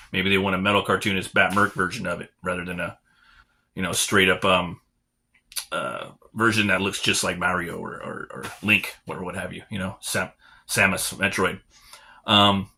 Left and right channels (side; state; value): both; identical; correlation 1.00